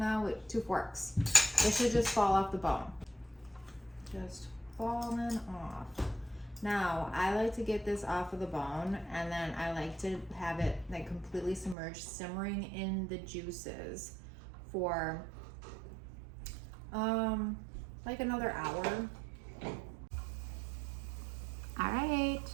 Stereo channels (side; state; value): left; drops out; at 11.8 s